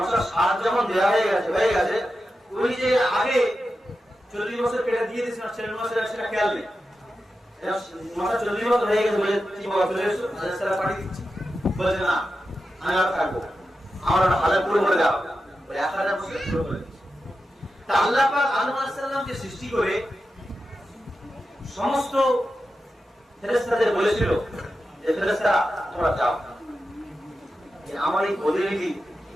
যখন দেওয়া হয়ে গেছে উনি যে আগে 40 বছর কেটে দিয়ে দিয়েছেন ছেলে নূহ আলাইহিস সালাম সেটা খেয়াল নেই। 40 বছর হয়ে গেছে বলে কি বাবা চলে এসো আলাইহিস সালাম পাঠিয়ে দিচ্ছি। বলে না আমি আর থাকবো, আমার হালে পুরো করে দাও। 1000 বছর পুরো করে দিচ্ছি। তা আল্লাহ পাক আদম আলাইহিস সালামকে সৃষ্টি করে সমস্ত ফেরেশতাদের বলেছিল যে ফেরেশতারা তোমরা যাও, আমার এই প্রতিনিধি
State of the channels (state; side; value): normal; both; correlation 0.90